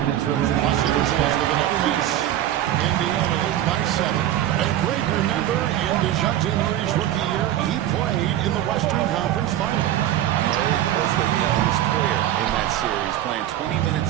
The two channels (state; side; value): quieter; left; 12.4 dB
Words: Los Angeles with another miss. Indiana leads by 7. A great remember in DeJounte Murray's rookie year, he played in the Western Conference Final. Murray was the youngest player in that series, playing 20